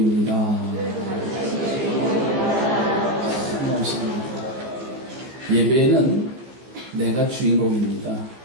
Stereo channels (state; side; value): late; left; 15 ms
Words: 예배는 내가 주인공입니다.